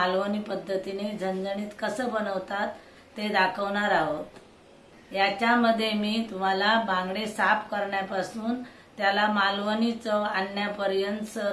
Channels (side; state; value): both; identical; correlation 1.00